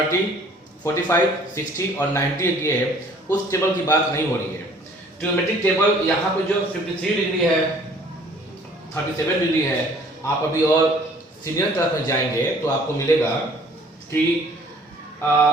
45, 60 और 90 किए है उस टेबल की बात नहीं हो रही है। ट्रिग्नोमेट्रिक टेबल यहाँ पे जो 53 डिग्री है, 37 डिग्री है, आप अभी और सीनियर क्लास में जाएंगे तो आपको मिलेगा कि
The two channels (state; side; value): normal; both; correlation 0.55